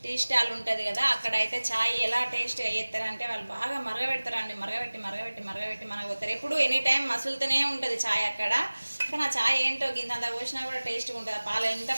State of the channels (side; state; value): both; inverted; correlation -1.00